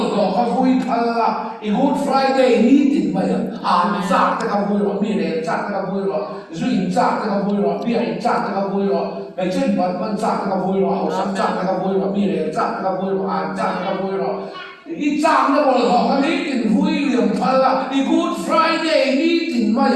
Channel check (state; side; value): identical; both; correlation 1.00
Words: ro khawi phalla i good friday ni tin ma ya an za ta khawi ro mi le za ta khawi ro zu in za ta khawi ro bi ai za ta khawi ro mai chen ban za ta khawi ro ho sa za ta khawi ro mi le za ta khawi ro an za ta khawi ro i za na bol ro kha ni tin hui liam phalla i good friday ni tin ma